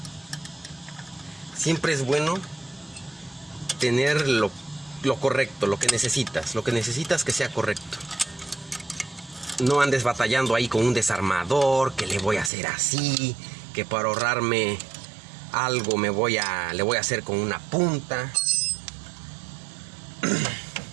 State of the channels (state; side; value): drops out; left; at 12.5 s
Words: Siempre es bueno tener lo correcto, lo que necesitas que sea correcto. No andes batallando ahí con un desarmador, que le voy a hacer así, que para ahorrarme algo le voy a hacer con una punta.